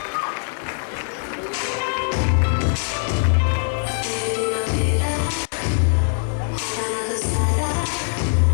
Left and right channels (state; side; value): silent; right; 59 dB below the other